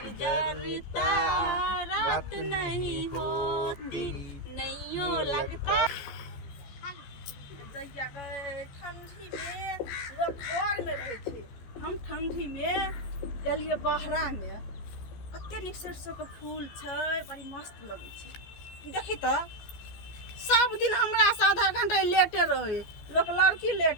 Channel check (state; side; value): late; right; 14 ms